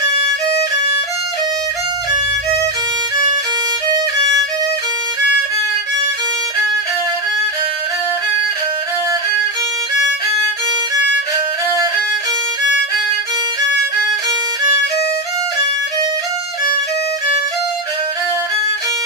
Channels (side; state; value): both; normal; correlation 0.10